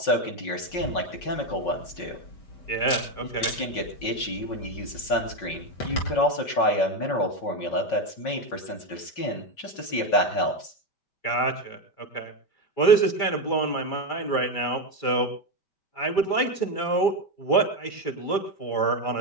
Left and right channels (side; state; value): right; late; 5.1 ms